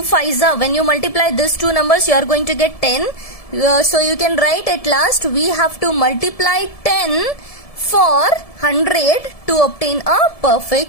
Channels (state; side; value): late; right; 1.7 ms